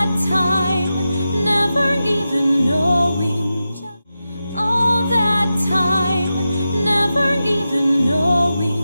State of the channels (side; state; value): both; inverted; correlation -0.91